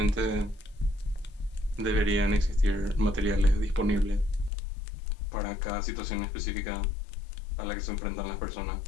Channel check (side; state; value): right; drops out; at 4.5 s